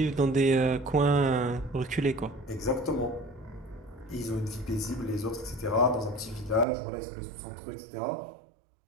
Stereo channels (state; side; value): drops out; left; at 6.7 s